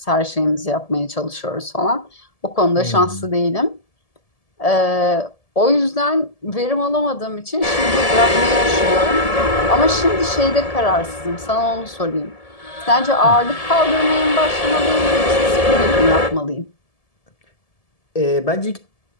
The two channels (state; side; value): late; right; 1.7 ms